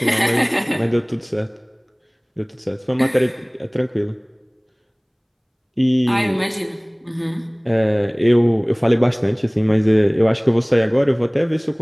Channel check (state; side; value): identical; both; correlation 1.00